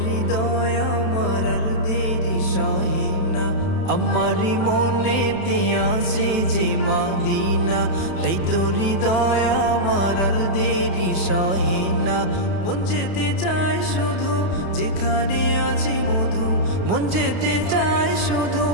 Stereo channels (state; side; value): late; right; 31 ms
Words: হৃদয় আমার আর দেরি সহে না। আমারি মনেতে আছে যে মদিনা, তাই তোর হৃদয় আমার আর দেরি সহে না। মন যেতে চায় শুধু যেখানে আছে মধু, মন যেতে চায় শুধু